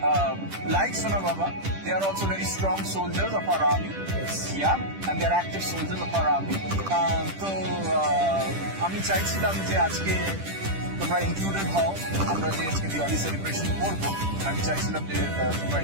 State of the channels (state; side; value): late; left; 10 ms